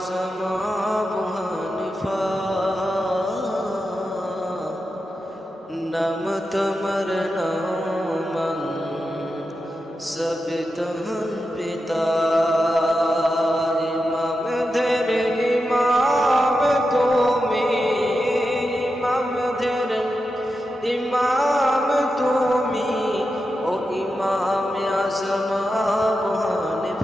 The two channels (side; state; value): both; normal; correlation 0.89